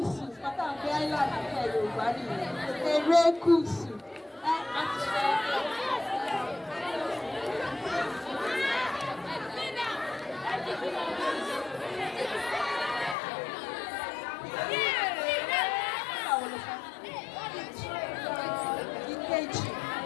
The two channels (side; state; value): right; drops out; at 13.2 s